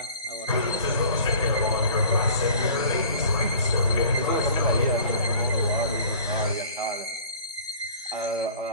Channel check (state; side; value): inverted; both; correlation -0.46